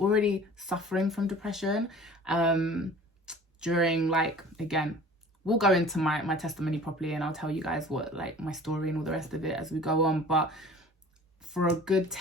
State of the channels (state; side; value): normal; both; correlation 0.45